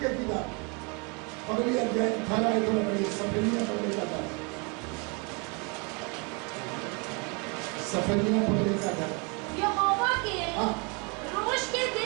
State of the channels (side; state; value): left; quieter; 32.0 dB